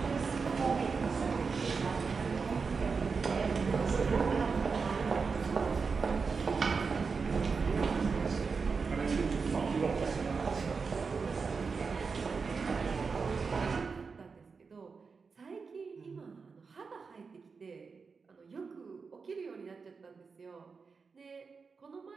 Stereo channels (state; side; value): quieter; left; 5.0 dB